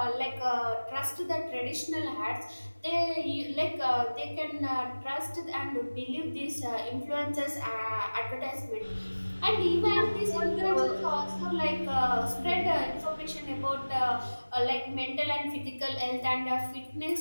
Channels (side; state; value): both; inverted; correlation -1.00